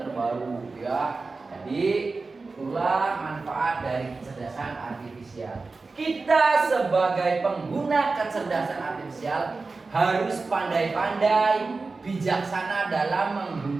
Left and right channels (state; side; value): quieter; left; 3.9 dB